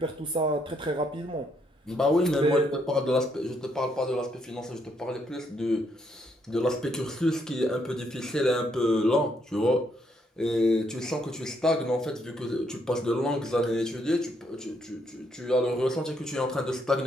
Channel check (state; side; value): normal; both; correlation 0.74